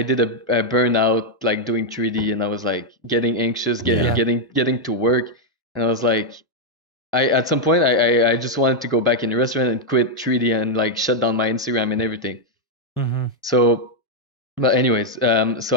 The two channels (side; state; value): both; normal; correlation -0.01